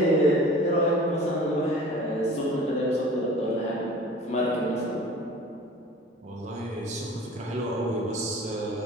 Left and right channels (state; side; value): normal; both; correlation 0.43